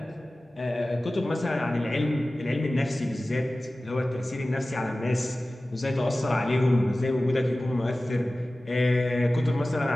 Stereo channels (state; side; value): normal; both; correlation 0.97